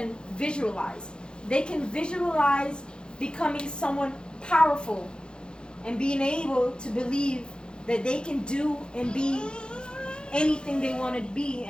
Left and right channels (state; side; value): late; right; 0.050 ms